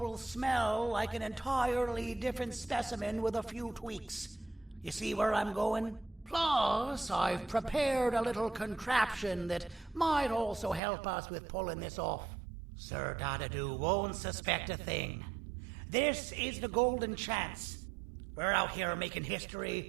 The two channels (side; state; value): left; drops out; at 10.8 s